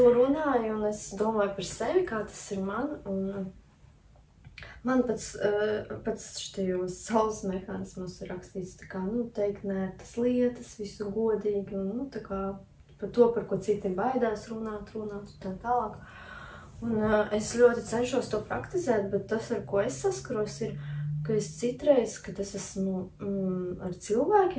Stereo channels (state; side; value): identical; both; correlation 1.00